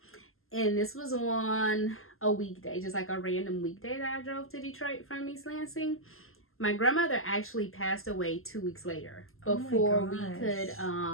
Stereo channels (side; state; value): right; late; 0.61 ms